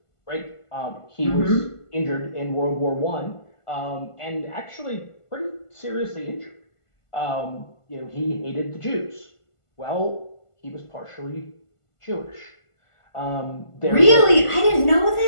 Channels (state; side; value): late; right; 1.5 ms